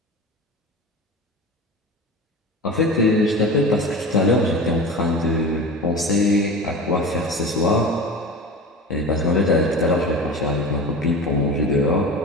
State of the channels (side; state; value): both; normal; correlation 0.31